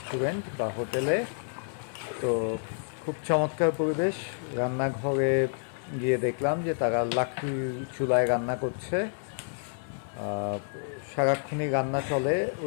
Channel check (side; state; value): right; silent; digital silence